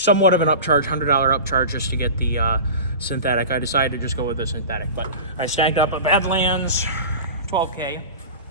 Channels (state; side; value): inverted; both; correlation -0.32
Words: of an upcharge, $100 upcharge just to get the synthetic, I decided to just go with the synthetic. But I snagged up a Badlands 12K.